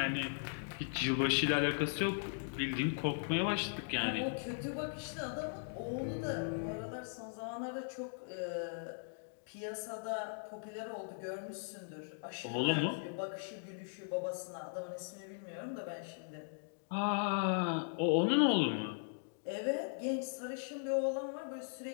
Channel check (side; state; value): right; silent; digital silence